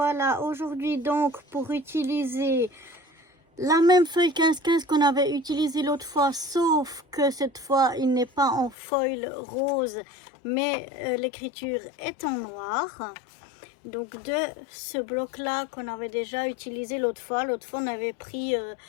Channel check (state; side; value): drops out; right; at 8.8 s